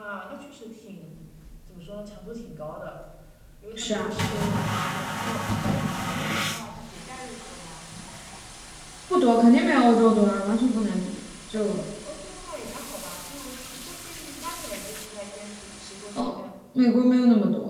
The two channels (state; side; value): identical; both; correlation 1.00